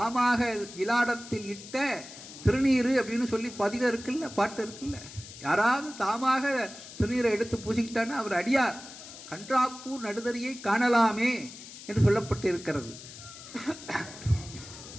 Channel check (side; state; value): left; noise; hiss, 15 dB below the sound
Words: இலாடத்தில் இட்ட திருநீரு அப்படின்னு சொல்லி பதிகம் இருக்குல்ல, பாட்டு இருக்குல்ல, யாராவது தாமாக திருநீரை எடுத்து பூசிக்கிட்டான்னா அவர் அடியார். கன்றாப்பூர் நடுதறியை காணலாமே என்று சொல்லப்பட்டு இருக்கிறது.